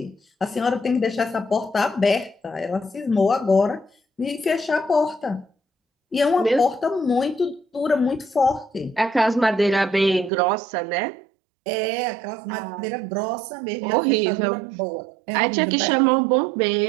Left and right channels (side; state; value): left; drops out; at 10.3 s